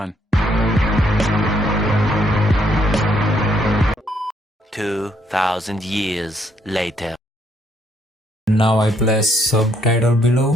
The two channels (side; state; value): both; normal; correlation 0.71